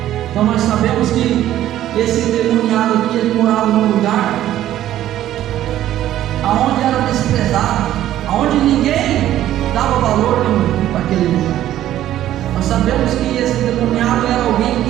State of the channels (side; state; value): left; quieter; 12.8 dB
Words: Então nós sabemos que esse endemoniado aqui, ele morava num lugar aonde era desprezado, aonde ninguém dava valor para aquele lugar. Nós sabemos que esse endemoniado era alguém